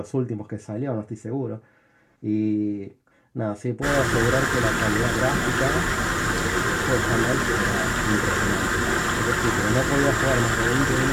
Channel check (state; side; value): identical; both; correlation 1.00